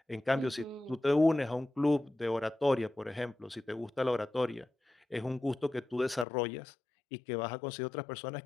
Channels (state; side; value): drops out; right; at 6.2 s